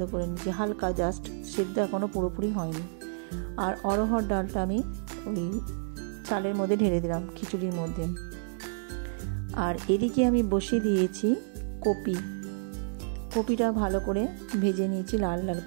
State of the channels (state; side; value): silent; left; digital silence